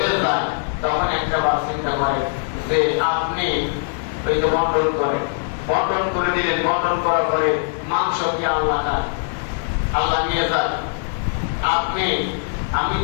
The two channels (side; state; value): right; silent; 65 dB below the other